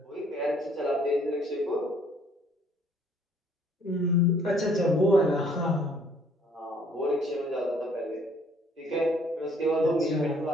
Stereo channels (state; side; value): normal; both; correlation 0.61